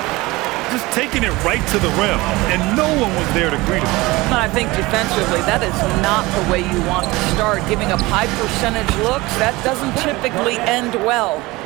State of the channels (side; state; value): left; quieter; 21.2 dB